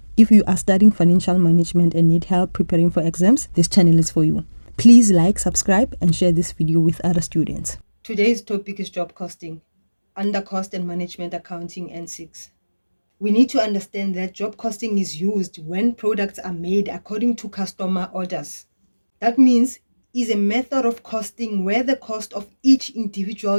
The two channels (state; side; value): inverted; both; correlation -1.00